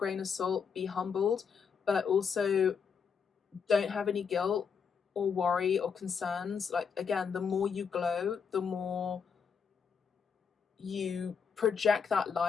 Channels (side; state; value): right; quieter; 6.3 dB